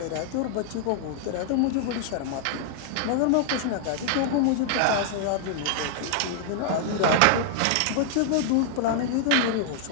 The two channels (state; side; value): different; both; correlation -0.01